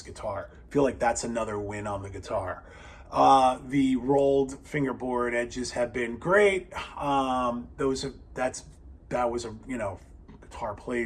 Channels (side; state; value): both; identical; correlation 1.00